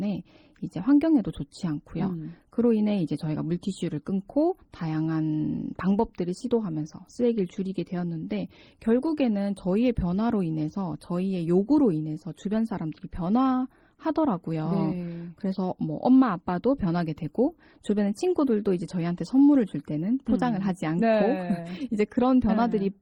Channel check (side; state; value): both; identical; correlation 1.00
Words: 이제 환경에도 좋지 않고요. 그로 인해 이제 저희가 물티슈를 끊고 다양한 방법들을 시도하면서 쓰레기를 줄이게 되었는데 결국에는 저희의 변화로 인해서 저희의 요구로 인해서 주변 사람들이 변화하더라고요. 네. 그래서 뭐 엄마 아빠도 변하게 되고 주변의 친구들도 이제 저희한테 선물을 줄 때는 포장을 하지 않고 네. 이제 그런